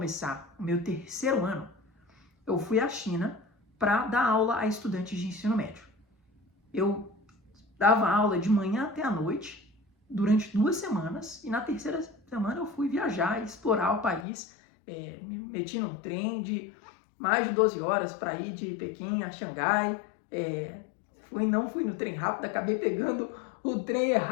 o meu terceiro ano. Eu fui à China para dar aula a estudantes de ensino médio. Eu dava aula de manhã até à noite, durante 2 semanas, e na terceira semana eu fui viajar e explorar o país. Me meti num trem de mais de 12 horas para ir de Pequim a Xangai. Não fui no trem rápido, acabei pegando o trem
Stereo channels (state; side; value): drops out; right; at 14.2 s